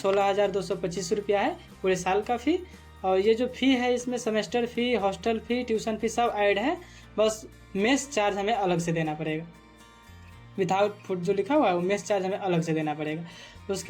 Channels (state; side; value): identical; both; correlation 1.00